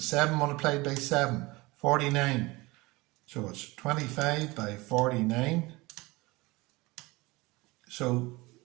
multiplied by 7, 49. So it's 25 by 49. So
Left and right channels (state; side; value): quieter; left; 22.4 dB